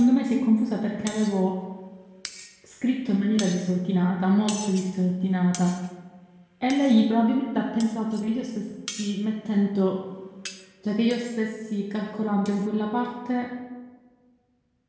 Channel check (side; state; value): both; identical; correlation 1.00